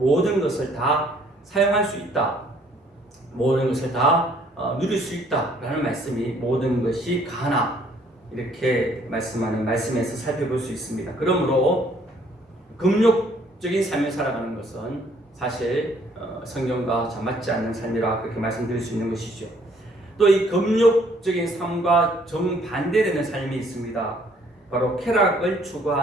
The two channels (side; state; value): both; normal; correlation 0.63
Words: 것을 다 사용할 수 있다, 모든 것을 다 누릴 수 있다라는 말씀이 모든 것이 가하나 이렇게 말씀하는 말씀에서 살펴볼 수 있습니다. 그러므로 금욕적인 삶을 살아가는 것은 사실 성경과 잘 맞지 않는 삶이라 그렇게 말씀드릴 수 있는 것이죠. 또 이 금욕적인 삶과 정반대되는 삶이 있습니다. 바로 쾌락을